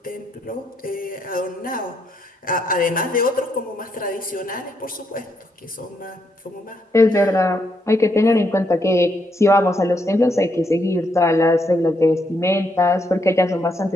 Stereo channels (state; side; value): normal; both; correlation 0.77